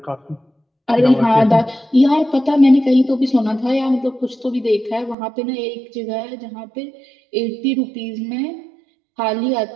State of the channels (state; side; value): drops out; left; at 5.2 s